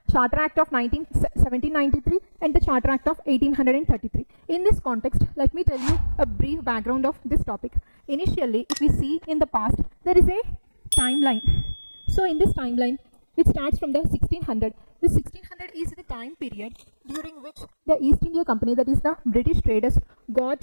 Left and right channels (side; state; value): both; inverted; correlation -1.00